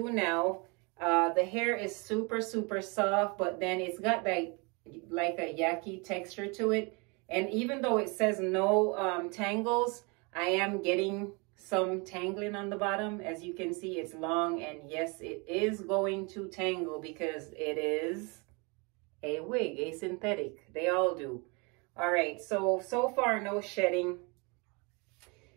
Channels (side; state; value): left; quieter; 30.3 dB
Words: now, the hair is super, super soft, but then it's got like a yaki texture to it. And even though it says no tangles, I am getting some tangling on the bottom. As you can see, it's long, and yes, it is going to tangle because it is a wig, a synthetic. They all do. All right, so far, no shedding.